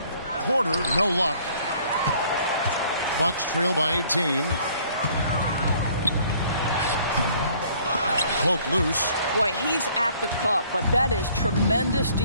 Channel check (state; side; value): inverted; both; correlation -0.58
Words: Porter, no luck. Bucks trail by 18. Poke loose. Boy, he's at the cup, but that is tremendous